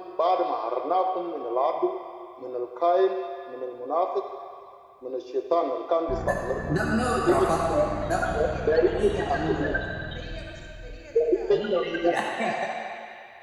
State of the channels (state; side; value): identical; both; correlation 1.00